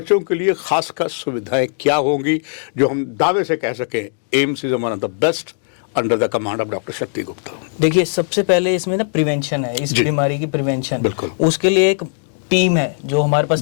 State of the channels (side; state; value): right; silent; digital silence